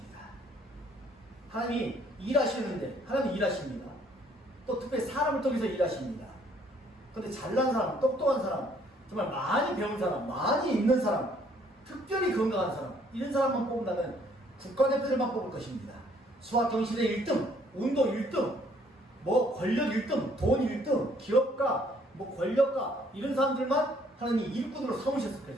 하나님이 일하시는데 하나님이 일하십니다. 또 특별히 사람을 통해서 일하십니다. 그런데 잘난 사람, 똑똑한 사람, 정말 많이 배운 사람, 많이 있는 사람, 특별히 건강한 사람, 이런 사람만 뽑는다면 국가대표들만 뽑을 것입니다. 수학 경시대 1등, 운동 1등, 뭐 권력 1등, 돈 1등, 기업가, 뭐 권력가, 이런 사람들만 하나님이 일꾼으로 삼으셨을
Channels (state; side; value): normal; both; correlation 0.63